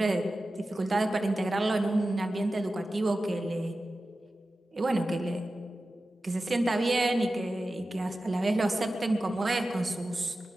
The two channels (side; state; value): both; normal; correlation 0.94